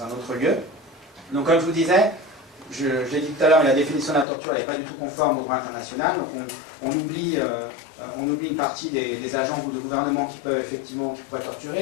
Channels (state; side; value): drops out; right; at 4.2 s